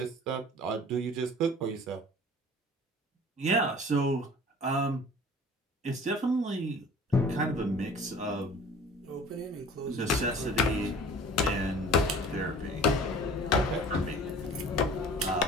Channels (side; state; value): both; normal; correlation 0.46